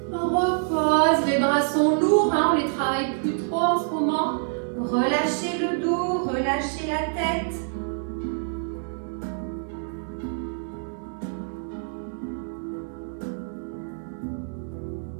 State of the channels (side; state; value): left; silent; digital silence